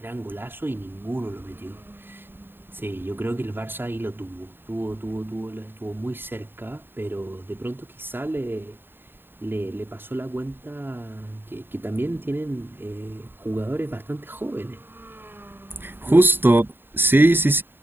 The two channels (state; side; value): late; left; 0.099 ms